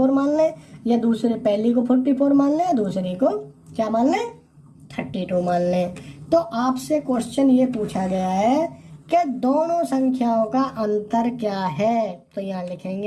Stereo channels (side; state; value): both; identical; correlation 1.00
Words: मान लें, या दूसरे पहली को 44 मान लें, दूसरी को क्या मान लें, 32 मान लें। तो आपसे क्वेश्चन ये पूछा गया है कि दोनों संख्याओं का अंतर क्या है, तो यहाँ